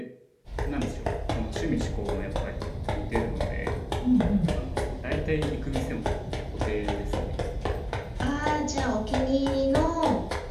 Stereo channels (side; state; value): both; identical; correlation 1.00